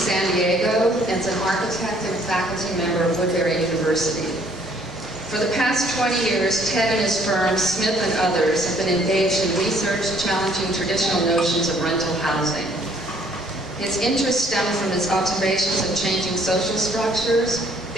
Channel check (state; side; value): normal; both; correlation 0.62